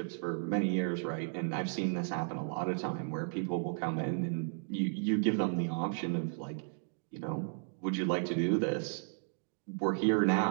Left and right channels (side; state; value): left; silent; digital silence